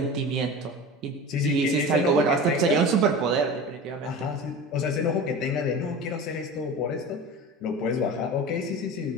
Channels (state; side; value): normal; both; correlation 0.32